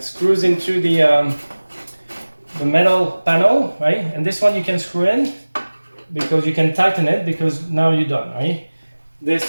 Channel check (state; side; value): inverted; both; correlation -1.00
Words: screws into the metal panel, right? And this one you can screw in because you can tighten it because now you're done, right?